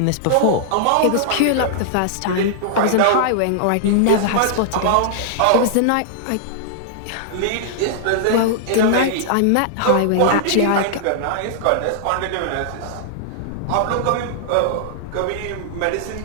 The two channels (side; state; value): both; different; correlation -0.01